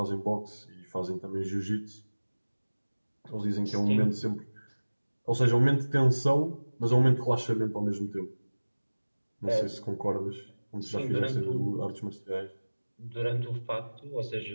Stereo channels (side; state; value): both; inverted; correlation -1.00